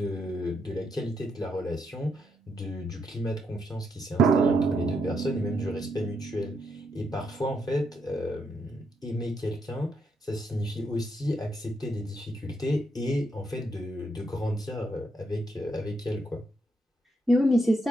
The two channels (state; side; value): normal; both; correlation 0.79